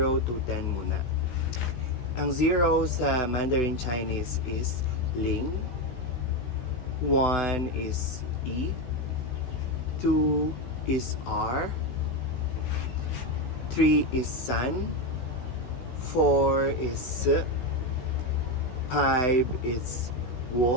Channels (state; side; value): late; right; 16 ms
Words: to 10 muna. Ang 0 sa Mandarin Chinese is Ling, 1 is E, 2 is R, 3 is San, 4 is S, 5 is